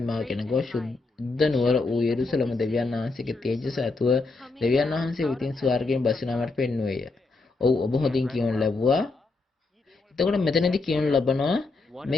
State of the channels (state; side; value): quieter; right; 3.6 dB